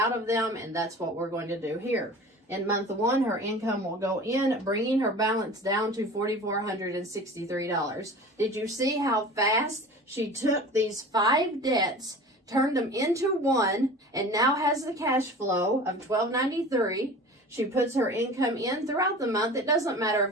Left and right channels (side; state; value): both; normal; correlation 0.38